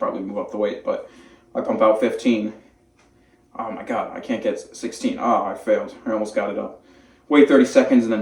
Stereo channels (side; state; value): both; identical; correlation 1.00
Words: move up the weight, but I pump out 15. Oh my god, I can't get 16. Oh, I failed. I almost got it up. Wait 30 seconds and